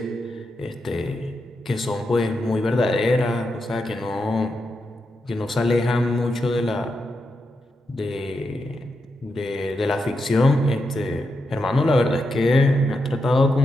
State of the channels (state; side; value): normal; both; correlation 0.86